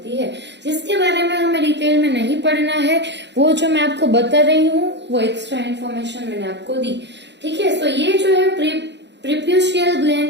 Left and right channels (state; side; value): late; left; 0.51 ms